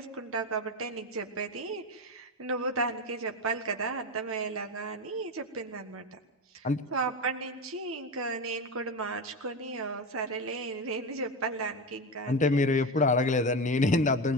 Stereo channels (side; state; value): both; normal; correlation 0.20